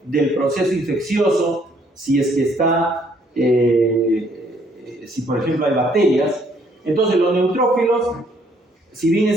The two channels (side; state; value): both; normal; correlation 0.65